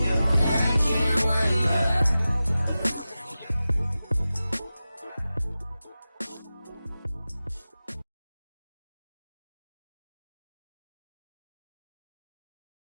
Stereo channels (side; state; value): both; inverted; correlation -0.95